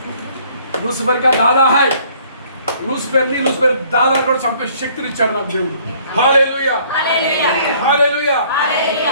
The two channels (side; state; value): both; inverted; correlation -0.59